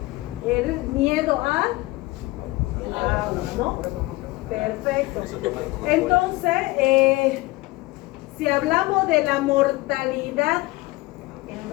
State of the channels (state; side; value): quieter; right; 21.3 dB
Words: el miedo a agua, ¿no? Perfecto. Entonces, si hablamos de la mortalidad